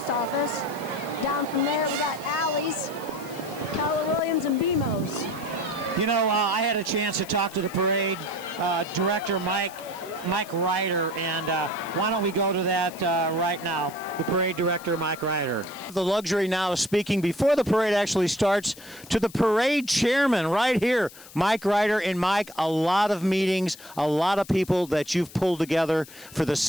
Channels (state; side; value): noise; left; hiss, 19 dB below the sound